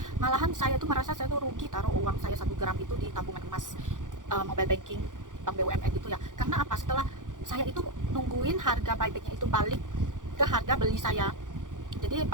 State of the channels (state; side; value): late; left; 0.88 ms